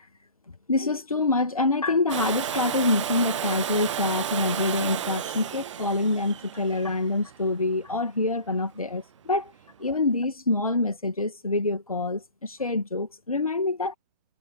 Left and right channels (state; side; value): inverted; both; correlation -0.44